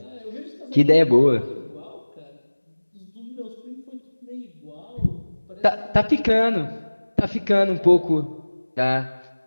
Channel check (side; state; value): both; inverted; correlation -1.00